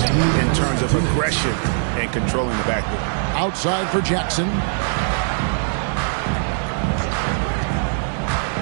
in terms of aggression and controlling the backboard. Outside for Jackson.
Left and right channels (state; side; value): silent; left; digital silence